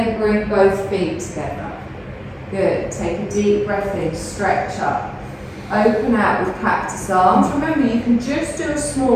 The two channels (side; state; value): both; identical; correlation 1.00